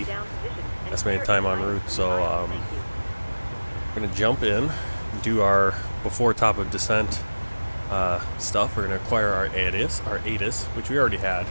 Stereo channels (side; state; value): both; inverted; correlation -1.00